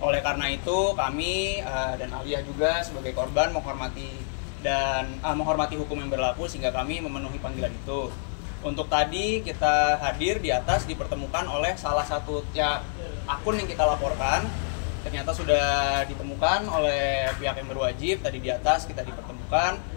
karena itu kami dan Alia juga sebagai korban menghormati hukum yang berlaku sehingga kami memenuhi panggilan itu. Untuk tadi kita hadir di atas dipertemukan oleh salah satu akun yang kita laporkan, ternyata sudah ditemukan oleh pihak yang berwajib. Tadi di atas kita dipertemukan.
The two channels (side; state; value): right; silent; digital silence